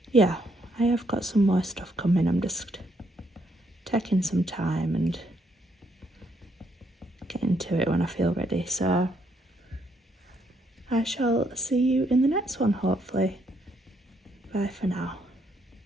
yeah, I have got some more stuff coming. I'm just taking some time and getting to it when I feel ready. So I shall see you in the next one, hopefully. Bye for now.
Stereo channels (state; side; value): normal; both; correlation 0.73